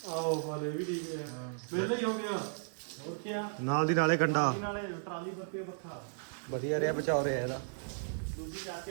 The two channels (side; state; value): left; silent; digital silence